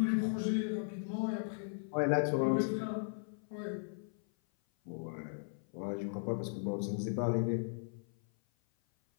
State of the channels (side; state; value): right; silent; 53 dB below the other